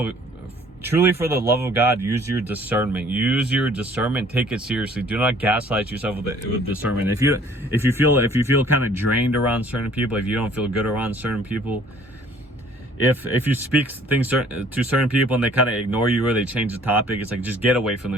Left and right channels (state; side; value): normal; both; correlation 0.56